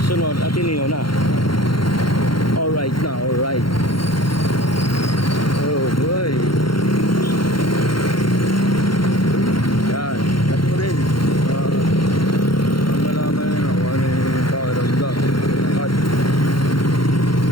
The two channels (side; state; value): right; late; 0.73 ms